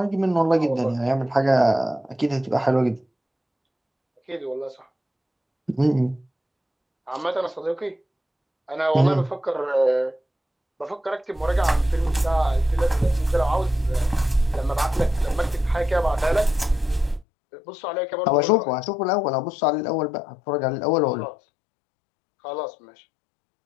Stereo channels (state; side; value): drops out; right; at 17.2 s